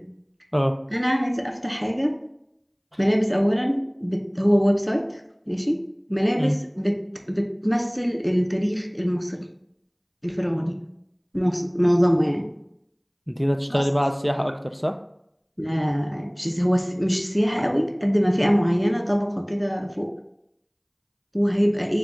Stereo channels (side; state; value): both; identical; correlation 1.00